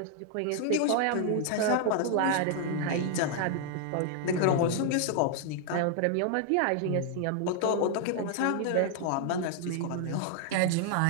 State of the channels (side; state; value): both; different; correlation 0.00